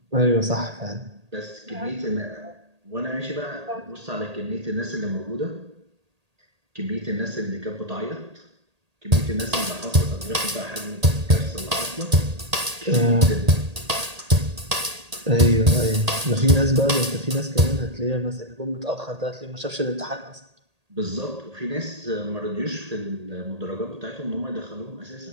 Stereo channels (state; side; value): late; left; 1.8 ms